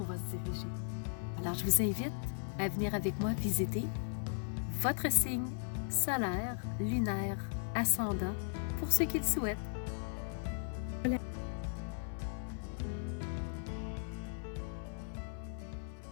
va se diriger. Alors, je vous invite à venir avec moi visiter votre signe solaire, lunaire, ascendant, pour ceux qui le souhaitent. Voilà.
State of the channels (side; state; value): right; silent; 53 dB below the other